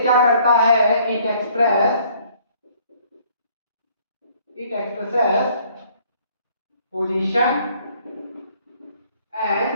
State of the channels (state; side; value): inverted; both; correlation -0.61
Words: क्या करता है? It expresses position and